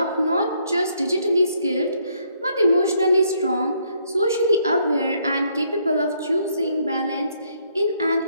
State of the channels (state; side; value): inverted; both; correlation -0.69